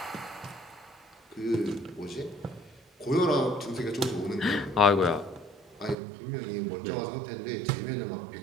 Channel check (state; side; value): drops out; left; at 6.0 s